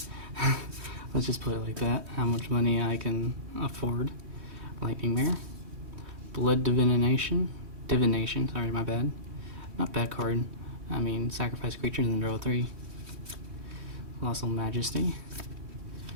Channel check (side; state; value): left; late; 3.2 ms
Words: Let's just put it like that. How much money I can afford. Lightning Mare. Blood Divination. Sorry, my bad. Not bad card. I mean, sacrifice creatures and draw 3. Colossal Majesty.